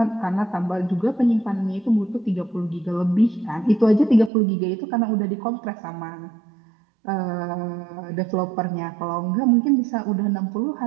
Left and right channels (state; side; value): drops out; left; at 4.3 s